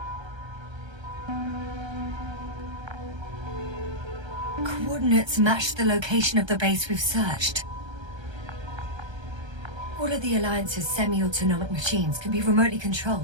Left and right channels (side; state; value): left; late; 1.3 ms